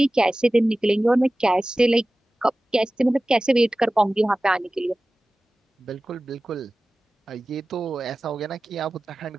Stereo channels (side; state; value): both; normal; correlation 0.96